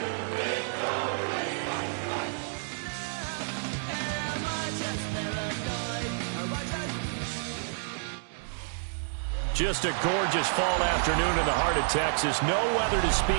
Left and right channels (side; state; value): left; silent; digital silence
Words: Just a gorgeous fall afternoon in the heart of Texas. No weather to